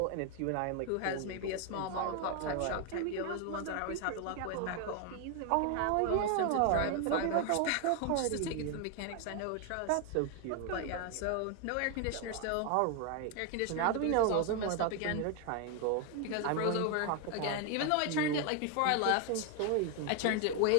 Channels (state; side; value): different; both; correlation 0.01